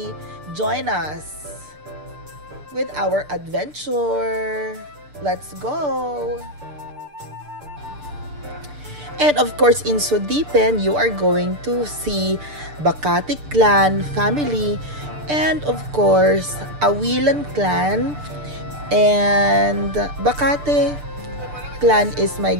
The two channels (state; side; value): late; left; 6.8 ms